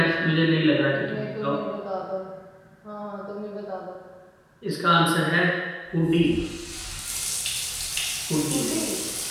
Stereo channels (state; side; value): identical; both; correlation 1.00